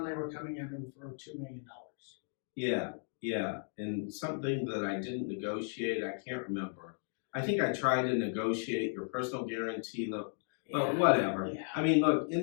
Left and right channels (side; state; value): right; silent; 54 dB below the other